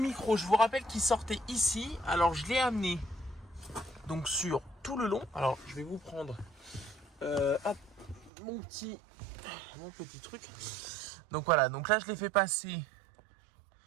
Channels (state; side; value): drops out; left; at 8.3 s